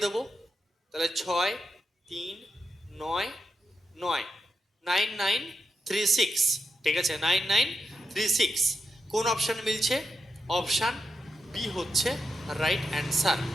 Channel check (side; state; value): both; normal; correlation 0.85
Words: দেবো। তাহলে 6 3 9 9, 9936। ঠিক আছে, 9936। কোন অপশান মিলছে? অপশান বি হচ্ছে রাইট অ্যান্সার,